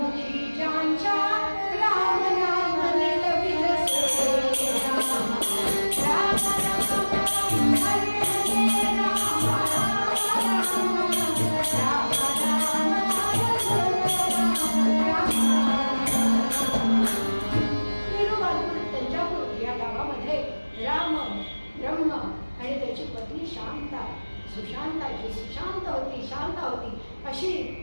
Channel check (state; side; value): inverted; both; correlation -1.00